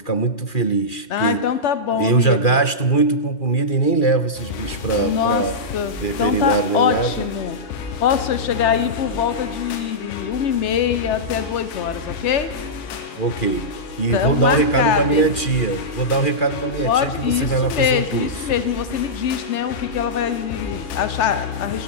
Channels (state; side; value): late; right; 2.4 ms